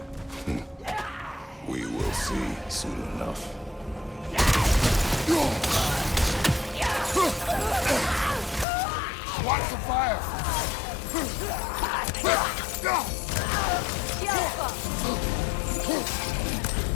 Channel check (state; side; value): drops out; right; at 8.7 s